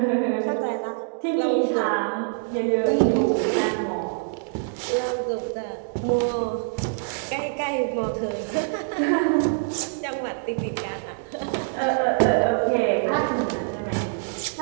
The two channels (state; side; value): silent; left; 62 dB below the other